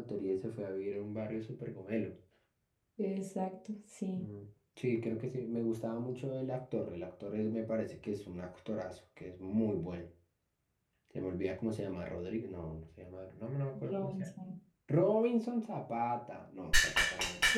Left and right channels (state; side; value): identical; both; correlation 1.00